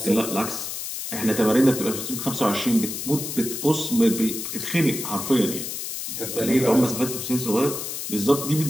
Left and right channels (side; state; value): left; noise; hiss, 6 dB below the sound